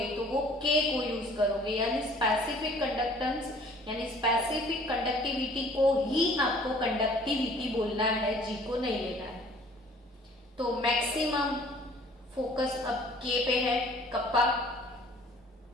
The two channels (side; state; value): both; normal; correlation 0.53